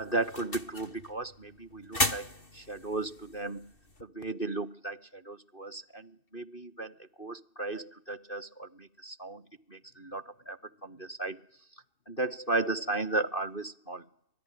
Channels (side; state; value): right; late; 2.7 ms